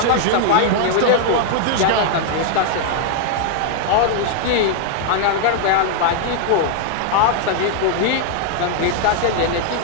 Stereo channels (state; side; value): different; both; correlation 0.00